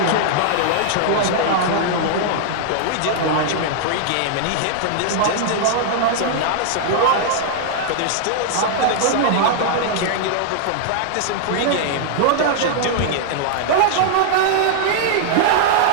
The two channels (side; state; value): both; different; correlation -0.01